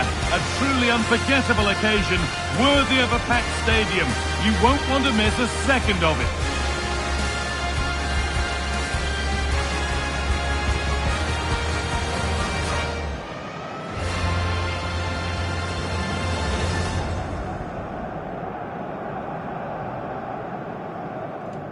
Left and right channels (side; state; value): both; identical; correlation 1.00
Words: A truly unforgettable occasion, worthy of a packed stadium. You won't want to miss a second of it.